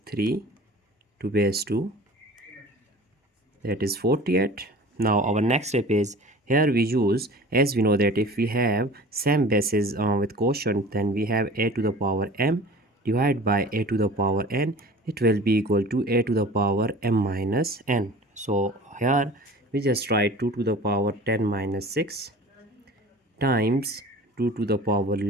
3 to base 2, that is 48. Now our next step is, here we use, as we know that if we have same bases with quotient, then we have a to the power m divided by a to the power n, it will be equal to a to the power m minus n. So here we just write 2 to the power 10 minus 6 times 2 to the power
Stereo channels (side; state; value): both; normal; correlation 0.42